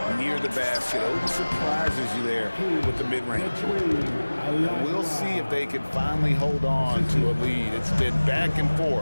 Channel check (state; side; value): inverted; both; correlation -1.00